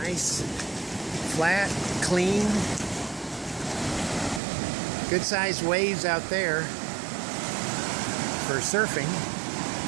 flat, clean. Good sized waves out there for surfing.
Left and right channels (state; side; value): drops out; left; at 4.4 s